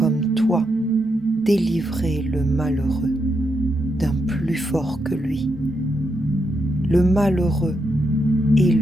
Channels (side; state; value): both; normal; correlation 0.82